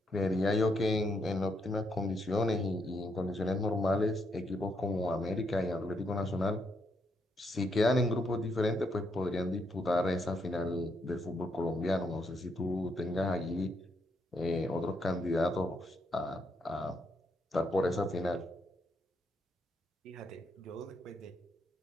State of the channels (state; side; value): normal; both; correlation 0.77